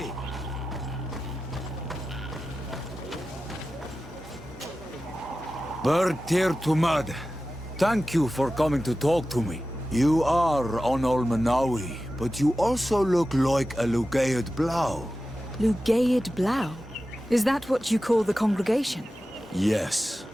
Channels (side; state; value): both; normal; correlation 0.94